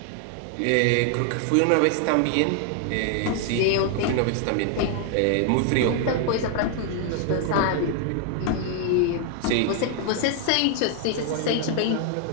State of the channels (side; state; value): both; different; correlation 0.00